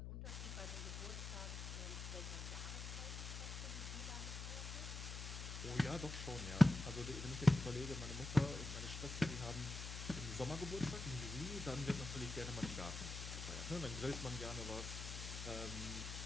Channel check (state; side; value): noise; left; hum, 6 dB below the sound